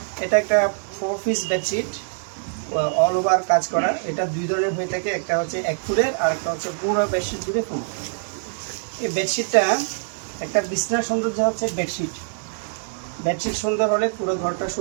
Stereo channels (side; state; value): left; silent; digital silence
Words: এটা একটা 4 পিস বেডশিট, অল ওভার কাজ করা। এটা দুই ধরনের হয়ে থাকে, একটা হচ্ছে 1 ফুটের আর একটা হচ্ছে পুরো বেডশিট জুড়ে ফুল। এই বেডশিটটা একটা বিছনার সৌন্দর্য হচ্ছে বেডশিট। বেডশিট সুন্দর হলে পুরো ঘরটা